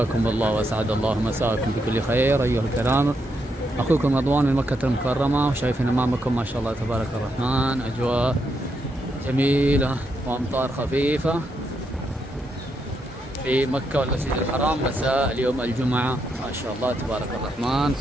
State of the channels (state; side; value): normal; both; correlation 0.80